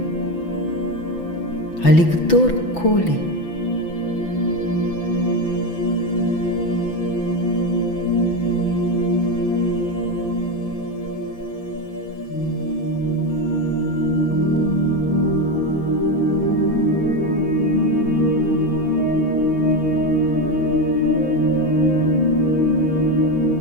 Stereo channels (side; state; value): right; late; 6.0 ms